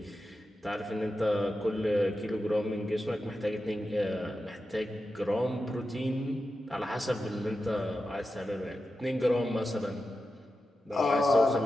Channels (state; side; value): normal; both; correlation 0.91